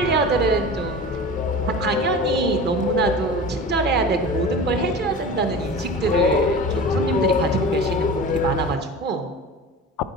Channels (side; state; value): both; normal; correlation 0.34